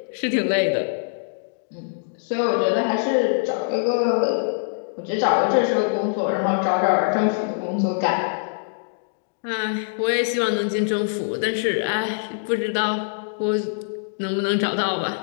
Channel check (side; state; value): right; silent; digital silence